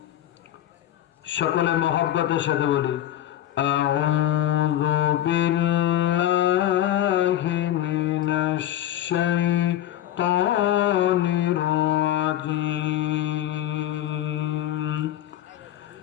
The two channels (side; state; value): right; quieter; 12.6 dB